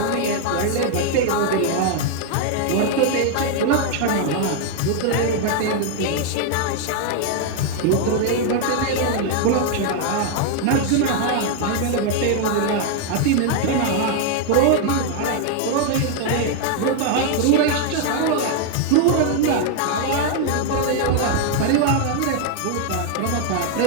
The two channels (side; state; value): both; different; correlation 0.00